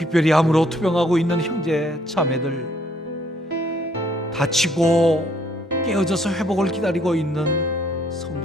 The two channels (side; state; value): both; normal; correlation 0.66